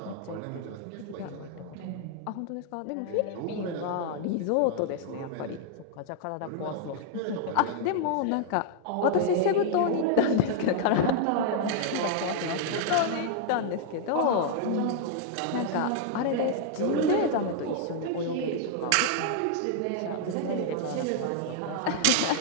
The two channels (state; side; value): different; both; correlation -0.01